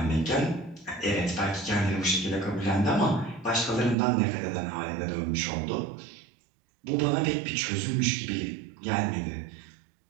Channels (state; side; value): drops out; left; at 4.0 s